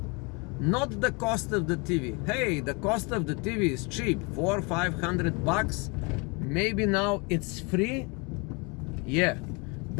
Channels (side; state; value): right; quieter; 30.3 dB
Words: not the cost of the TV. Hey, the cost of the TV is cheap, $400 or $500. Maybe now it's free. Yeah,